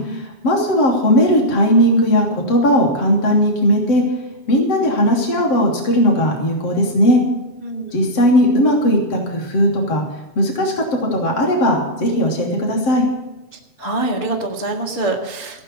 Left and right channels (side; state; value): right; late; 7.6 ms